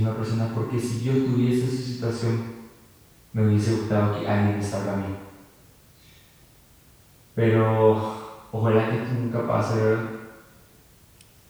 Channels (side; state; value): both; identical; correlation 1.00